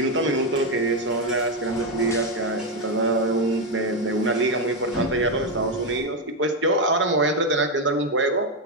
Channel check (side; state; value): both; normal; correlation 0.06